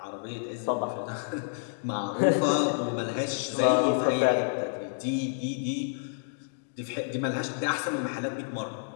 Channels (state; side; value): silent; right; digital silence